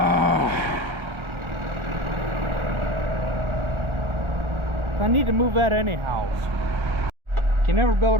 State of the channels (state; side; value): late; left; 1.4 ms